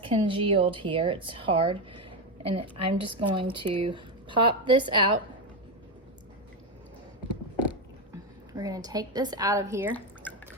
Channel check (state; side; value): normal; both; correlation 0.10